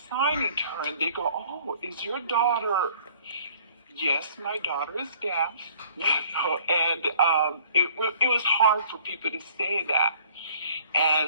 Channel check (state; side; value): inverted; both; correlation -0.55